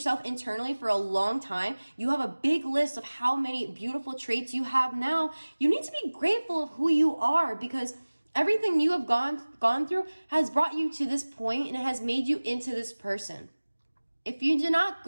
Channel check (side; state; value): both; inverted; correlation -1.00